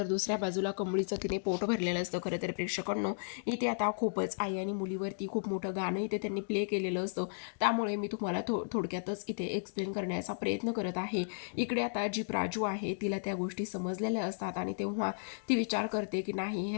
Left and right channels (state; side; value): silent; right; digital silence